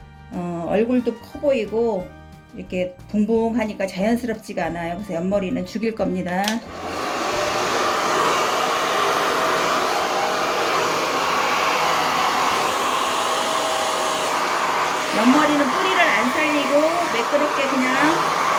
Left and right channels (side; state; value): both; identical; correlation 1.00